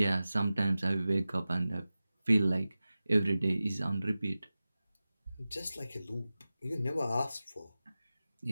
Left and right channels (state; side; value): inverted; both; correlation -0.96